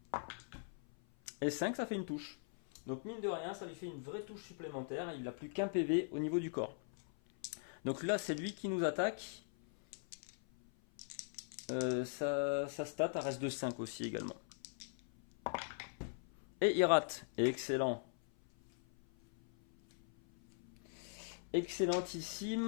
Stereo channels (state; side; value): silent; right; 50 dB below the other